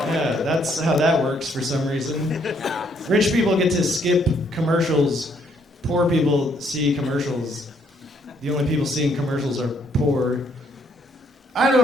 Yeah, that's how that works for some reason. Rich people get to skip commercials. Poor people see commercials. The only people seeing commercials are poor. I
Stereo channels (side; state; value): both; normal; correlation 0.69